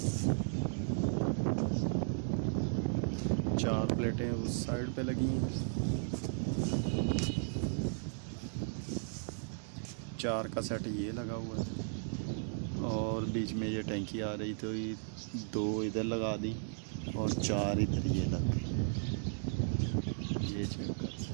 4 प्लेटें उस साइड पे लगी हैं, 4 का सेट ये लगा हुआ है और बीच में ये टैंकी आ रही तो ये 2 इधर लगा दी और 4 इधर ये लग गई। ये चेक कर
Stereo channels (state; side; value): silent; left; 54 dB below the other